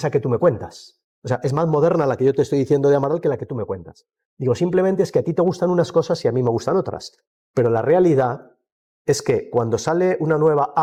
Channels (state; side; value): identical; both; correlation 1.00